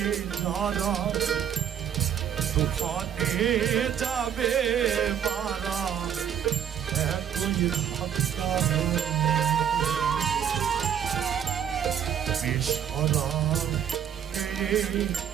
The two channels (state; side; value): quieter; left; 9.0 dB